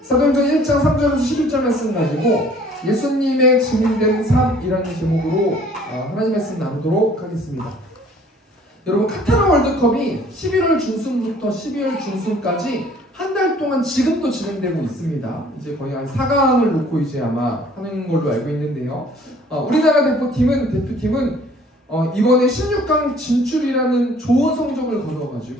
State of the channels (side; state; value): both; normal; correlation 0.55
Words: 사도행전 1장 3절에서 11절 말씀 가지고 예수님의 증인된 삶이라는 제목으로 하나님 말씀 나누도록 하겠습니다. 여러분 카타르 월드컵이 11월 중순부터 12월 중순까지 한 달 동안 지금도 진행되고 있습니다. 이제 거의 한 4강을 놓고 이제 아마 하는 걸로 알고 있는데요. 우리나라 대표팀은 이번에 16강 진출이라는 좋은 성적을